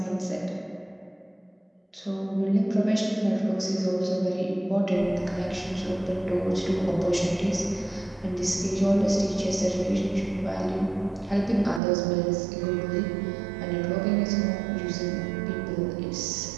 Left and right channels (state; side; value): drops out; left; at 11.8 s